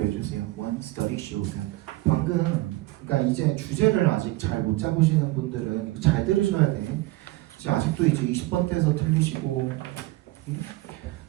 주세요. one study showed that. 방금 그러니까 이제 주제를 아직 잘 못 잡으시는 분들은 이거 잘 들으셔야 돼. 이제 아직도 이제 20번대에서 틀리시고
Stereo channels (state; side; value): quieter; left; 19.1 dB